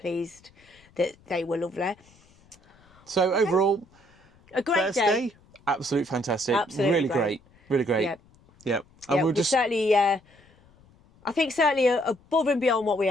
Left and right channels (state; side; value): noise; left; rumble, 29 dB below the sound